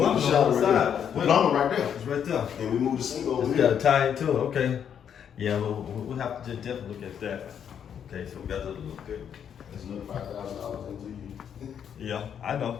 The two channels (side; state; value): right; quieter; 8.4 dB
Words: the shower on the right side. there. The plumber right there, It's right there. and we move the sink over We here. gotta tie it to it, okay. Yeah, we'll have to just definitely look at that. Okay, so we got to look good. That's another $5,000 into you. Yeah, I know.